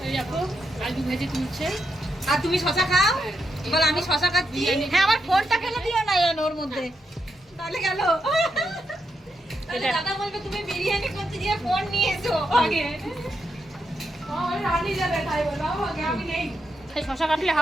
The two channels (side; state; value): both; normal; correlation 0.83